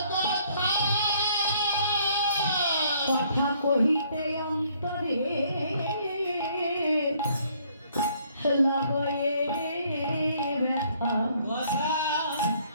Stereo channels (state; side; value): inverted; both; correlation -0.64